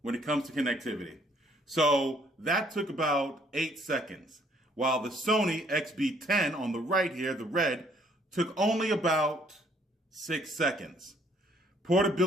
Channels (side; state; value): both; normal; correlation 0.63